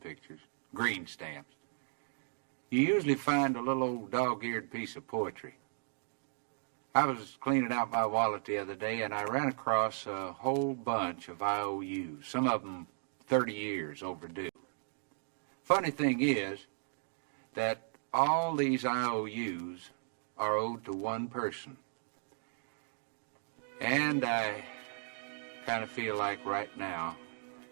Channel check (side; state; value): left; silent; digital silence